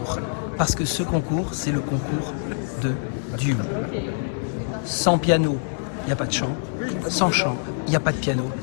Parce que ce concours, c'est le concours de duo. Sans piano, il n'y a pas de chant. Sans chant, il n'y a pas de piano.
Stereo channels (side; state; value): right; silent; digital silence